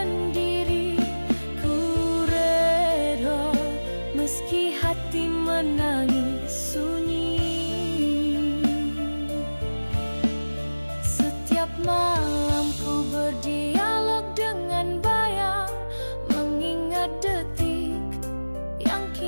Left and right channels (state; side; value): inverted; both; correlation -1.00